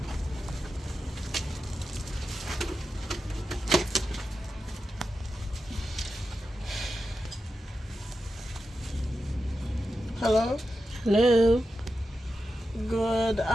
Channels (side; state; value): both; normal; correlation 0.90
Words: Hello? Hello. Good